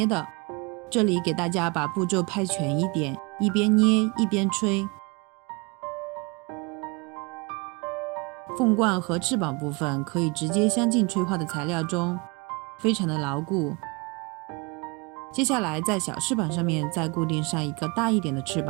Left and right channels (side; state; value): left; quieter; 28.1 dB